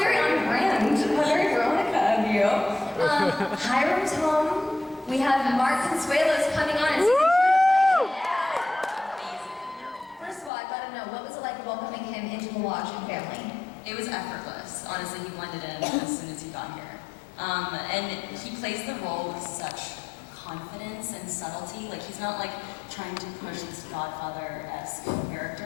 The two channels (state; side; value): drops out; right; at 10.5 s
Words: on brand. How very Veronica of you. Hiram's home. We have Mark Consuelos coming on in season 2. First of all, I gotta know, what was it like welcoming him into the Lodge and family? It was effortless. Honestly, he blended in as soon as he got here. And he plays the role with such confidence and subtlety. Like, he's not like trying to push this Godfather-esque